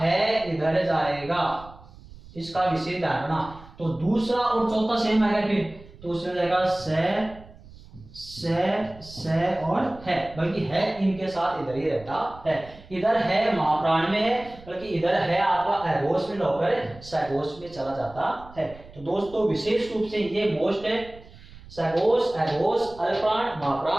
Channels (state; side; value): noise; right; rumble, 20 dB below the sound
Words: इधर जाएगा, इसका विशेष ध्यान रखना। तो दूसरा और चौथा सेम आएगा, फिर तो उसमें जाएगा से और है, बल्कि है इनके साथ इधर ही रहता है। इधर है महाप्राण में है, बल्कि इधर है आपका अघोष में होकर सघोष में चला जाता है। तो दोस्तों विशेष रूप से ये मोस्ट है, सघोष, अघोष, अल्पप्राण,